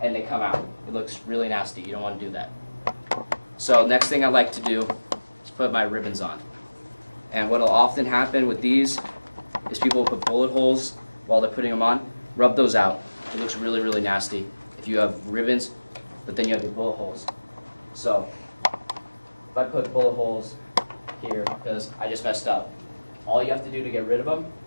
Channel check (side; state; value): both; inverted; correlation -1.00